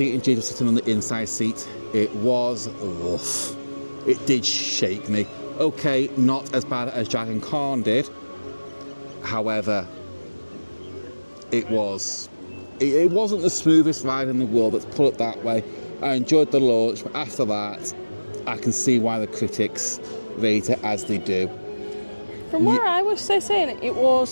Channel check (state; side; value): inverted; both; correlation -1.00